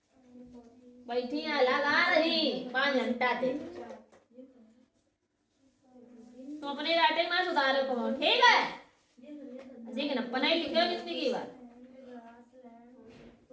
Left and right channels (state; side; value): identical; both; correlation 1.00